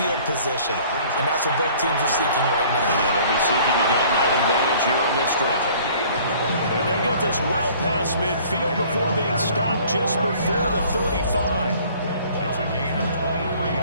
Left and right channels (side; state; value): both; inverted; correlation -0.53